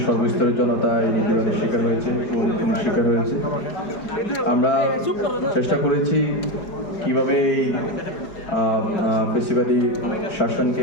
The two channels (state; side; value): late; right; 4.9 ms